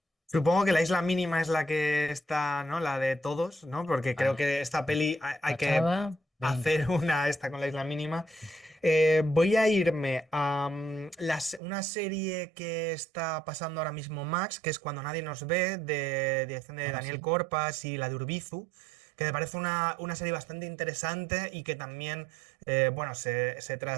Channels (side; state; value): left; drops out; at 11.6 s